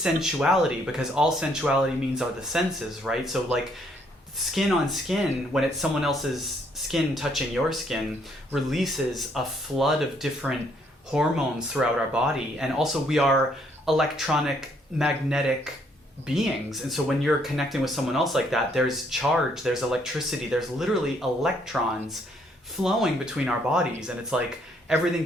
because all sensuality means are the senses, right? So like skin on skin, when it's someone else's skin touching your skin, releases a flood of different hormones throughout our body, and also we are electronic magnetic beings, and so when you're connecting with someone else like that, there's charge, there's electricity, there's literally electrons flowing between our bodies, and it's like everything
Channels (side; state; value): both; normal; correlation 0.68